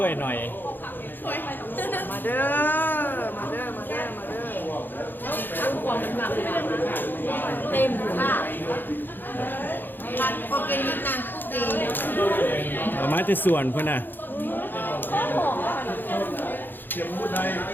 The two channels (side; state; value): right; late; 0.092 ms